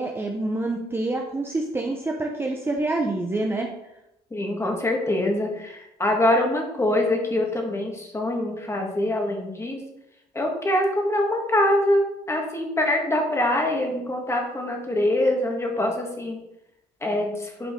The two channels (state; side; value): normal; both; correlation 0.69